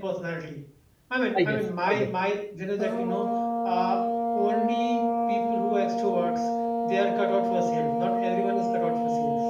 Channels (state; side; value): identical; both; correlation 1.00